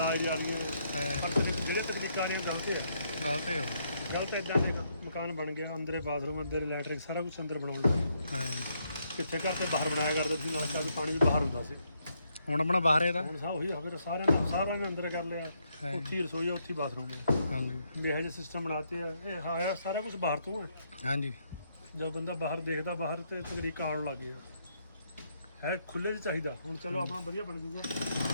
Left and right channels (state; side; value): inverted; both; correlation -0.75